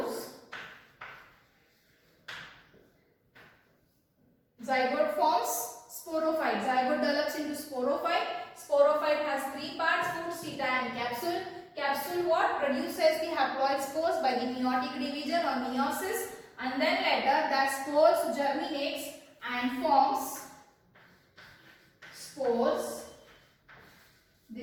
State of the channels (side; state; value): both; identical; correlation 1.00